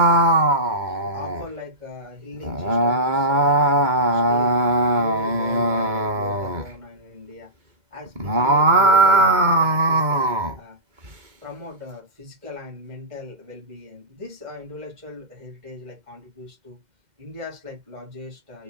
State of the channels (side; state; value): left; late; 2.2 ms